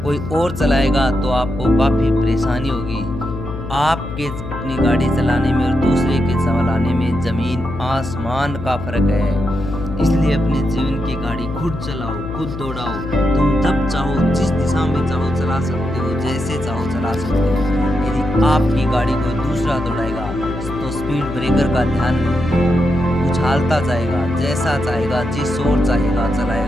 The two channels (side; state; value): left; noise; hum, 9 dB below the sound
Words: कोई और चलाएगा तो आपको काफ़ी परेशानी होगी। आपके अपनी गाड़ी चलाने में और दूसरे के चलाने में ज़मीन आसमान का फ़र्क है। इसलिए अपने जीवन की गाड़ी खुद चलाओ, खुद दौड़ाओ। तुम जब चाहो, जिस दिशा में चाहो चला सकते हो, जैसे चाहो चला सकते हो। यदि आपकी गाड़ी कोई दूसरा दौड़ाएगा तो स्पीड ब्रेकर का ध्यान उछालता जाएगा, जैसा चाहेगा, जिस ओर चाहेगा